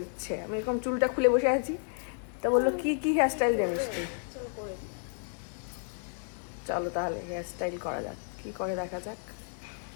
দিচ্ছে। আমি এরকম চুলটা খুলে বসে আছি, তা বললো কি কি হেয়ার স্টাইল জানিস তুই? চলো তাহলে হেয়ার স্টাইল করা যাক, কি করে দেখা যাক।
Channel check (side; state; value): right; silent; 57 dB below the other